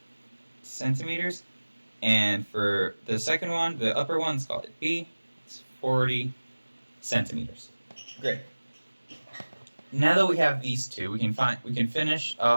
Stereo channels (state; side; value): inverted; both; correlation -1.00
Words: centimeters. And for the second one, the upper one, let's call it B. It's 40 centimeters. Great. Now that we have these two, we can finish